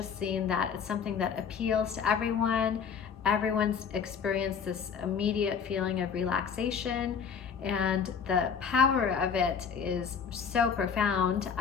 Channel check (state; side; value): quieter; right; 6.6 dB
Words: seen that it's something that appeals to everyone. Everyone's experienced this immediate feeling of relaxation, and the power of it is so profound.